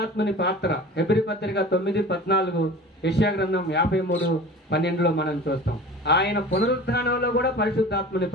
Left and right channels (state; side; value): normal; both; correlation 0.39